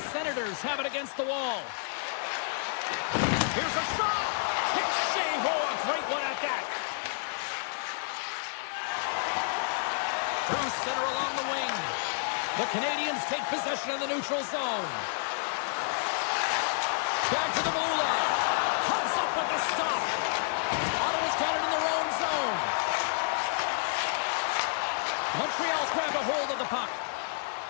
Senators have it against the wall. Here's a shot. Kick save. Oh, a great one at that. Through center along the wing. The Canadians take possession of the neutral zone. Back to the blue line. Comes up with the stop. Ottawa's got it in their own zone. Montreal's grabbed a hold of the puck.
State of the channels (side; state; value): right; silent; 58 dB below the other